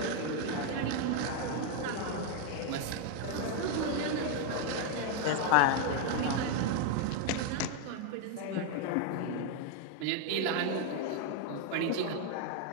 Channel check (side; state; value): both; different; correlation 0.00